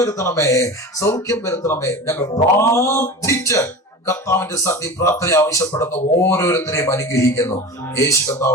സൗഖ്യം വരുത്തണമേ. ഞങ്ങൾ പ്രാർത്ഥിച്ച് കർത്താവിന്റെ സന്നി പ്രാർത്ഥന ആവശ്യപ്പെടുന്ന ഓരോരുത്തരെയും അനുഗ്രഹിക്കുന്നു യേശു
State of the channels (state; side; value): normal; both; correlation 0.32